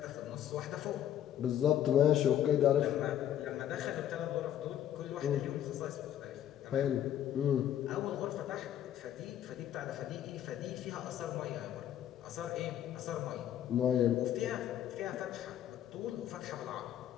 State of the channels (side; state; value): right; quieter; 10.8 dB